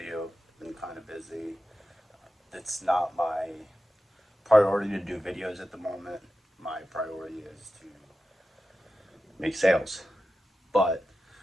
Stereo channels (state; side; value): normal; both; correlation 0.92